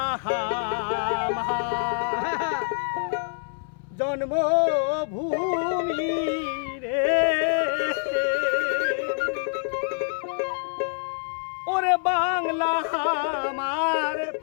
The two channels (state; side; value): silent; right; 61 dB below the other